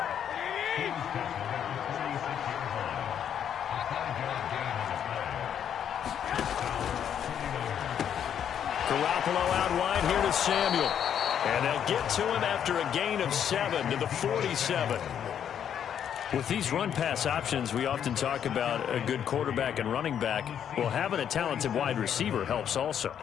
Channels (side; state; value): right; quieter; 9.0 dB